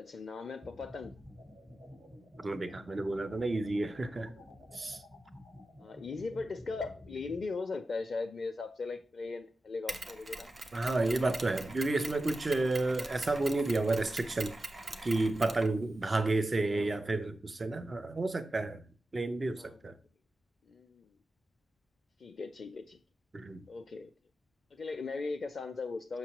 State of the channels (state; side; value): normal; both; correlation 0.92